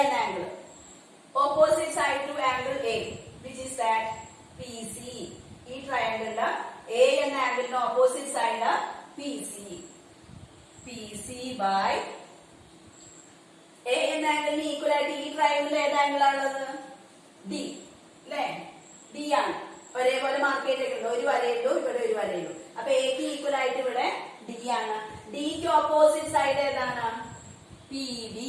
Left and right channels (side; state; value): both; identical; correlation 1.00